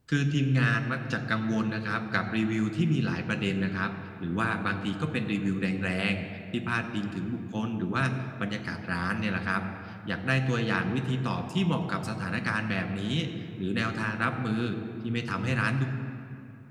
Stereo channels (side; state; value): both; identical; correlation 1.00